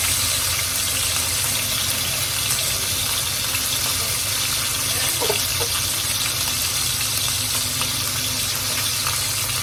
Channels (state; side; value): identical; both; correlation 1.00